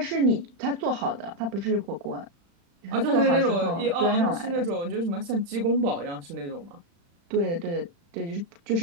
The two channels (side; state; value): left; late; 35 ms